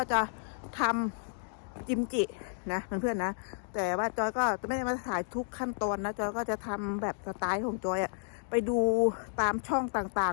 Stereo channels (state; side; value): silent; right; digital silence